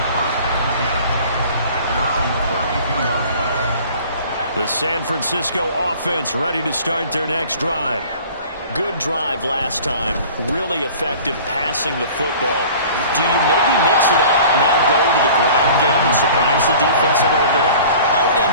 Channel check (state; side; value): inverted; both; correlation -0.45